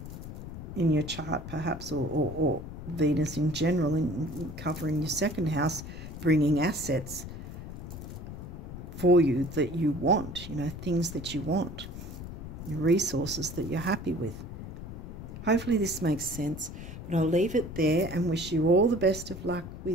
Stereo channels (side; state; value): left; noise; rumble, 10 dB below the sound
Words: in your chart, perhaps, or Venus in general, in covering your second house, bringing assets for you that you want, things that you want, resources that you're happy with. Hopefully this makes sense, but I'll leave it there and wish you all the best of luck